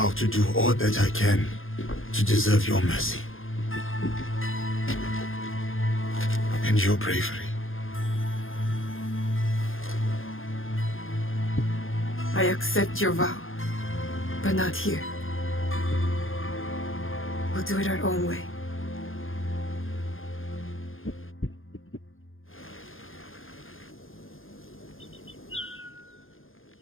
to do all that I can to deserve your mercy. And your bravery. I accept your vow, but not here. We'll do it our own way.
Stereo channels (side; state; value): right; late; 0.59 ms